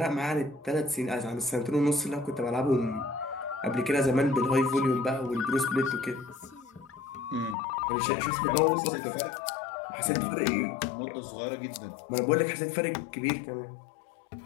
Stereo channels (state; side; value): drops out; right; at 7.6 s